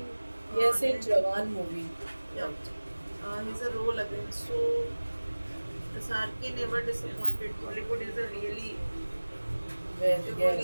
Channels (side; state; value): both; inverted; correlation -1.00